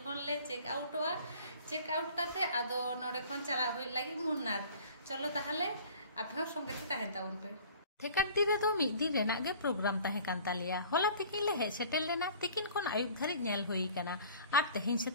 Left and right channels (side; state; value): both; inverted; correlation -0.48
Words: खन ले चेक आउट काते आदो नोडे खन चला होय लगी मुन्नार चलो ताहले आपे संगे ते ताहेन ताउन पे थेकाडी रे दो मिद दिन रेना गे प्रोग्राम ताहे कान तालिया होला तिकिन ले हे सेटेल लेना तिकिन खन आयुब धरी नेल होई काना आर तेहिन